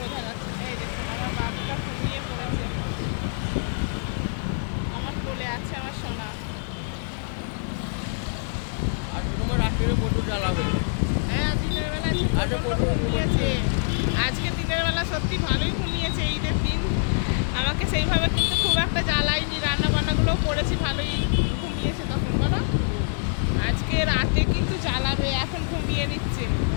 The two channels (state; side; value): silent; right; digital silence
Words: যাচ্ছে না। এই দেখুন আমার বাবুটা ঘুমিয়ে পড়েছে, আমার কোলে আছে আমার সোনা। আর তোমার রাত্রে প্রচুর জ্বালাবে। হ্যাঁ দিনের বেলা ঘুমিয়েছে, আজকে দিনের বেলা সত্যি ভালোই ঘুমিয়েছে। ঈদের দিন আমাকে সেইভাবে কিন্তু খুব একটা জ্বালাইনি, রান্না বান্নাগুলো করেছি, ভালোই ঘুমিয়েছে তখন বলো। আজকে রাতে কিন্তু জ্বালাবে, এখন ঘুমিয়ে নিচ্ছে।